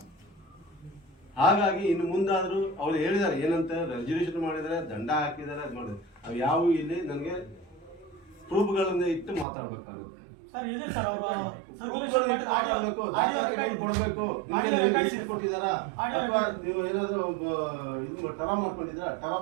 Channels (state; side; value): drops out; left; at 9.5 s